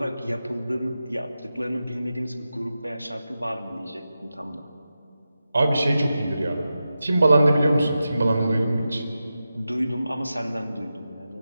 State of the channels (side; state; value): both; inverted; correlation -0.91